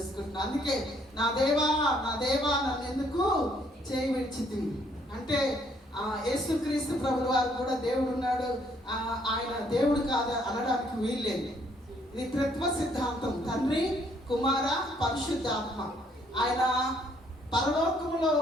అందుకే నా దేవా నన్ను ఎందుకు చేయి విడిచితివి అంటే యేసుక్రీస్తు ప్రభుల వారు కూడా దేవుడు ఉన్నాడు, ఆయన దేవుడు కాదు అనడానికి వీల్లేదు. ఇది త్రిత్వ సిద్ధాంతం, తండ్రి కుమార పరిశుద్ధాత్మ. ఆయన పరలోకములో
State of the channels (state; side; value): normal; both; correlation 0.67